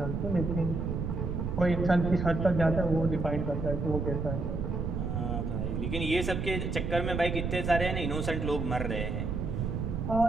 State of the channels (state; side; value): noise; right; rumble, 2 dB below the sound